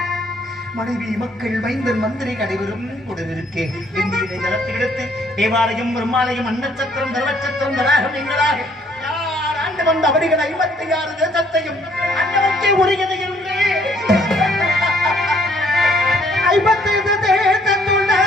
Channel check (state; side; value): normal; both; correlation 0.64